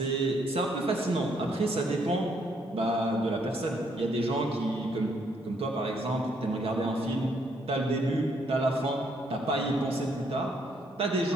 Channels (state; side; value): normal; both; correlation 0.71